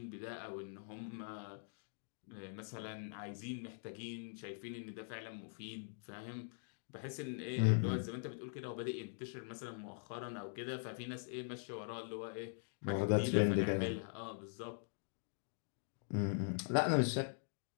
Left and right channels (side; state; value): right; silent; digital silence